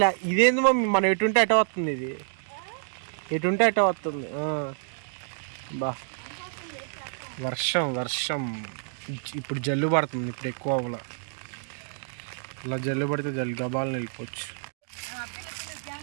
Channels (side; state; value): left; silent; digital silence